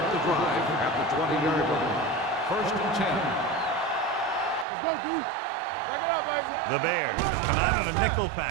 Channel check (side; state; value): left; drops out; at 4.7 s